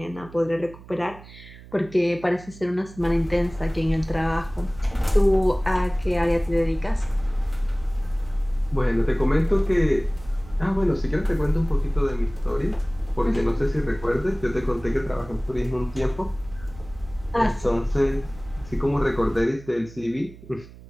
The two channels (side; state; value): right; noise; hum, 19 dB below the sound